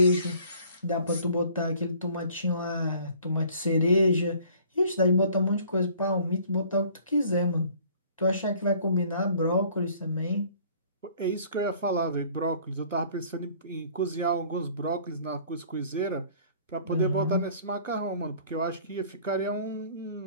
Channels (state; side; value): inverted; both; correlation -0.54